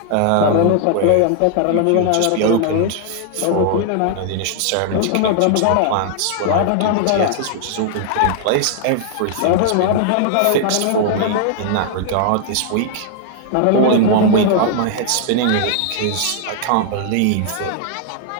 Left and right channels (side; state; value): both; different; correlation 0.00